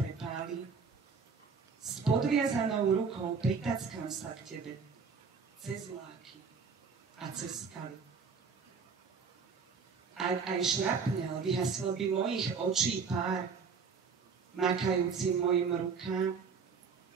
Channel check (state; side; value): quieter; left; 5.4 dB